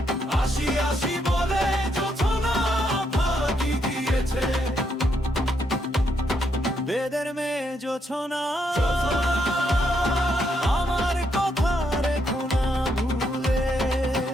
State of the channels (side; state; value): both; normal; correlation 0.77